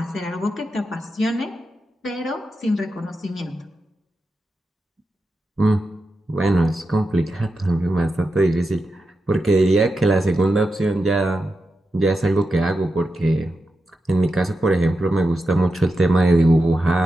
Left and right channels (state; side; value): normal; both; correlation 0.89